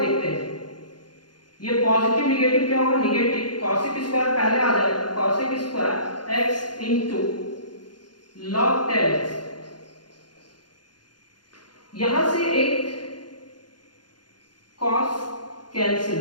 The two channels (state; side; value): late; right; 0.70 ms